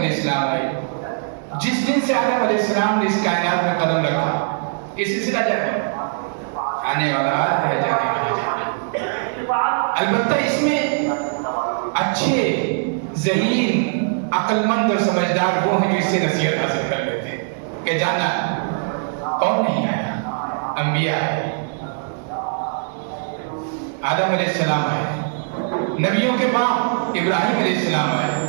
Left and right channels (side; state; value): left; silent; digital silence